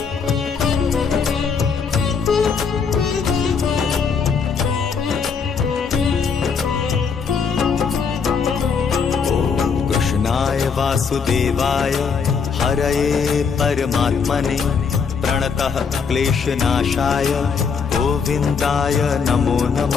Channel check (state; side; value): quieter; right; 5.9 dB